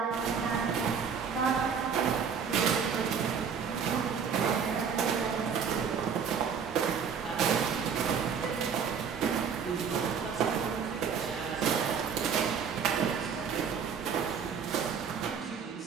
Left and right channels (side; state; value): left; quieter; 6.6 dB